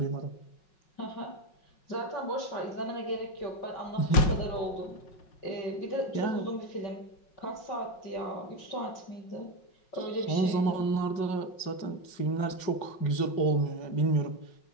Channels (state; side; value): late; right; 5.4 ms